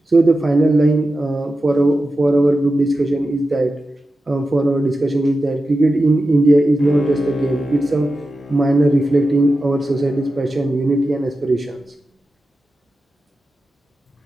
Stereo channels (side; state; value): both; normal; correlation 0.92